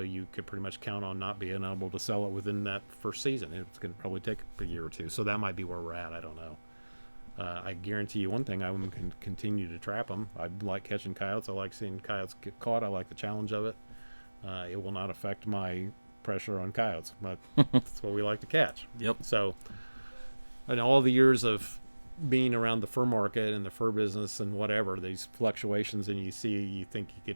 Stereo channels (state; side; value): inverted; both; correlation -1.00